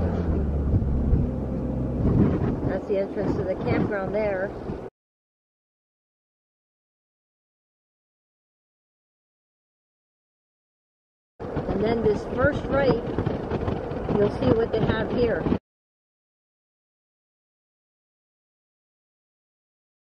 That's the entrance to the campground there. And then this first right, you'll see what they have here.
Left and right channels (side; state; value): both; identical; correlation 1.00